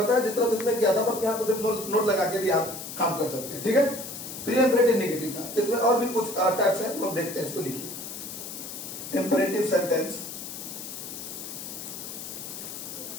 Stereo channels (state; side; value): noise; left; hiss, 9 dB below the sound